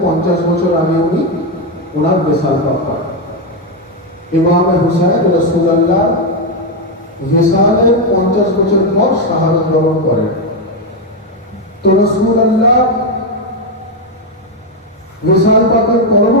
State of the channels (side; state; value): both; normal; correlation 0.05